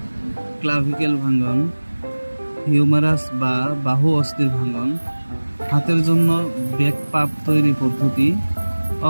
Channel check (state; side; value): inverted; both; correlation -1.00